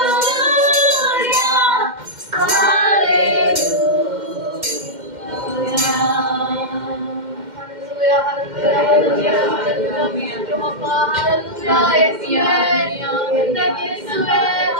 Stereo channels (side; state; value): left; late; 2.1 ms